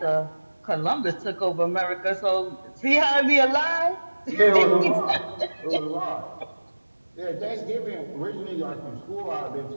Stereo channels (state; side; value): inverted; both; correlation -1.00